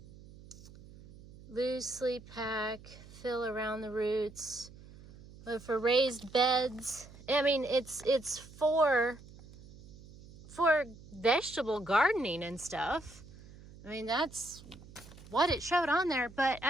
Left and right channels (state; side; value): noise; right; hum, 19 dB below the sound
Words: Loosely pack, fill around the roots, but for raised beds. I mean, it's for vegetable gardening and stuff. I mean, that's what it showed on there. But